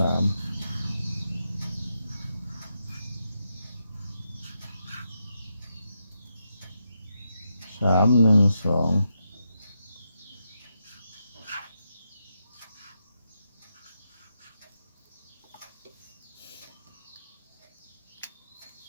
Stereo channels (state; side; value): inverted; both; correlation -0.84